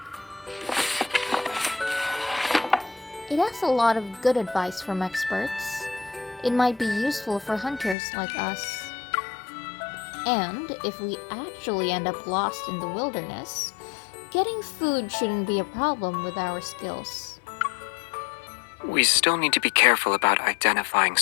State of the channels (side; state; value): right; drops out; at 8.0 s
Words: It has a lot of good advice from experts. It might be useful for hunters like us. And if we actually end up lost in the wilderness, getting food shouldn't be a problem with our skills. We still need to be careful about identifying